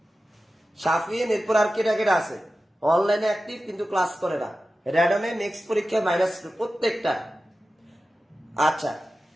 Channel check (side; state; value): both; normal; correlation 0.94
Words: শাফিন। এরপর আর কেটা কেটা আছে অনলাইনে অ্যাক্টিভ কিন্তু ক্লাস করে না? র্যাডনে নেক্সট পরীক্ষা -2 প্রত্যেকটা। আচ্ছা